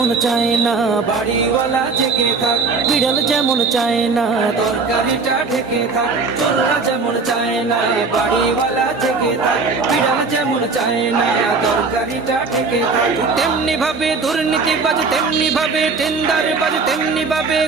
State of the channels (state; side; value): quieter; left; 4.4 dB